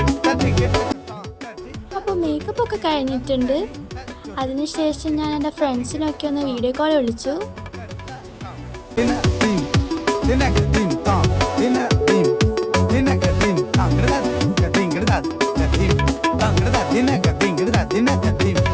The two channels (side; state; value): both; identical; correlation 1.00